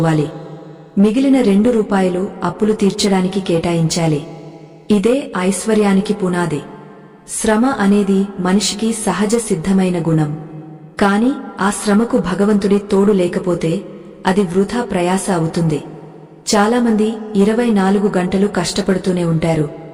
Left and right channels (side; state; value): both; identical; correlation 1.00